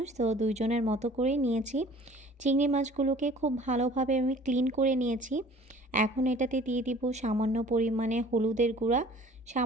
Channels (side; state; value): both; normal; correlation 0.49